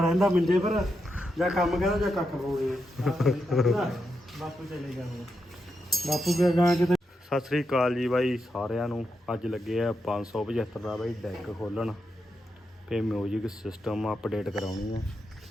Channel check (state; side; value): normal; both; correlation 0.85